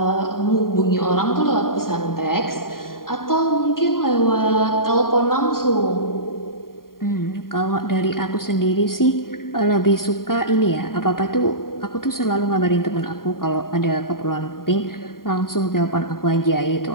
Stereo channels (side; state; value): right; late; 0.91 ms